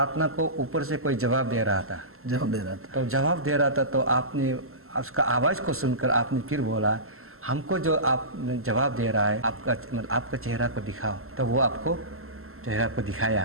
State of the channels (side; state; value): left; late; 0.62 ms